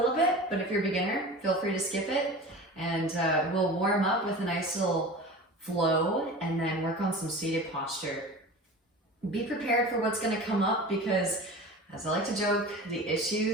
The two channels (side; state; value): both; normal; correlation 0.35